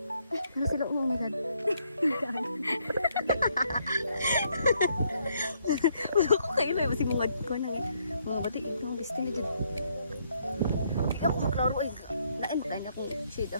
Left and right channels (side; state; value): both; inverted; correlation -0.72